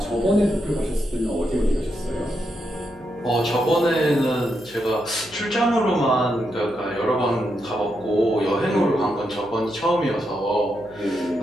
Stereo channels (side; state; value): right; noise; hum, 26 dB below the sound